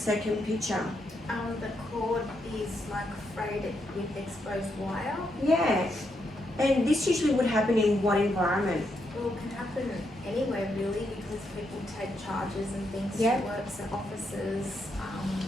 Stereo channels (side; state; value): both; normal; correlation 0.80